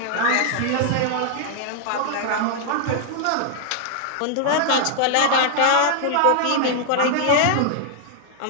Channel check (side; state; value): both; different; correlation 0.00